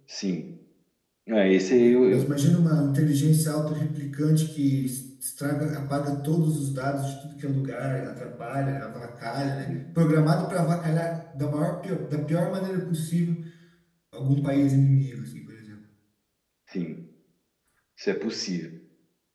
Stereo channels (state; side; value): identical; both; correlation 1.00